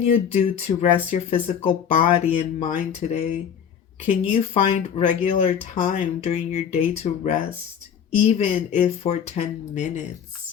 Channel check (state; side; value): quieter; right; 8.1 dB